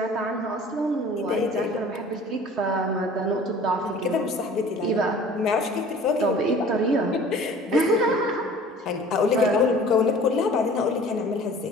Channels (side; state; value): both; normal; correlation 0.47